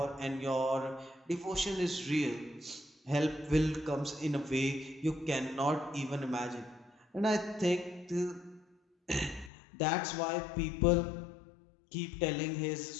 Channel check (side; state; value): right; drops out; at 9.5 s